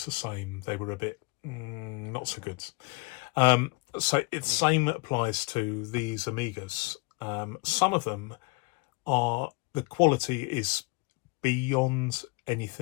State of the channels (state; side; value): quieter; right; 27.3 dB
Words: the same, they were a bit not so good. So the same applies to these Amigas. Some of them the quality is beyond